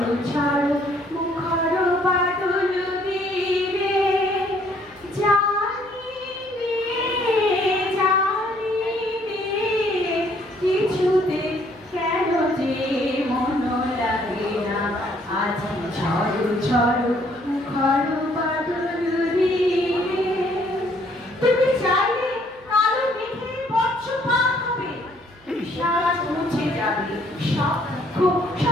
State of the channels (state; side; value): noise; right; hum, 29 dB below the sound